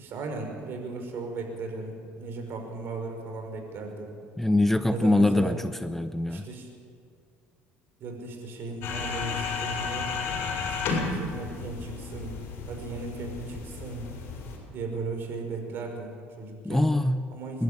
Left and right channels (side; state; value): both; normal; correlation 0.78